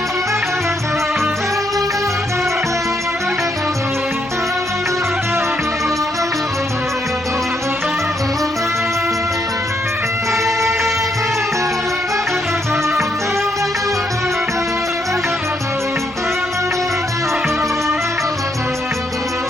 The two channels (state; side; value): noise; left; hum, 24 dB below the sound